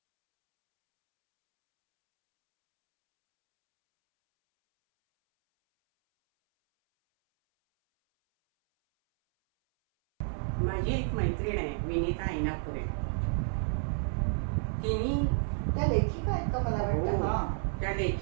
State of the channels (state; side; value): silent; left; 58 dB below the other